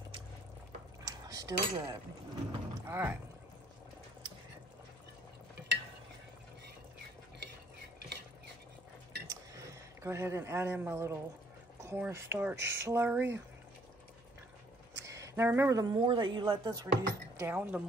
Still good. All right. Go ahead and add in my little cornstarch slurry. Now remember, the more that you let this reduce down, the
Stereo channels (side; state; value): both; normal; correlation 0.63